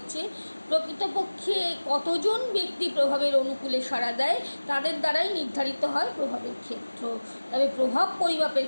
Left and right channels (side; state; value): both; inverted; correlation -1.00